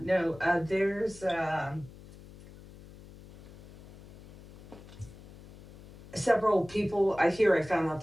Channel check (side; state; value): left; noise; hum, 20 dB below the sound